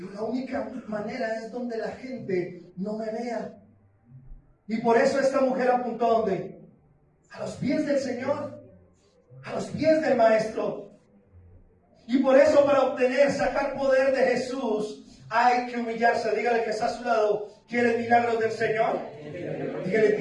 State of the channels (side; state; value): both; identical; correlation 1.00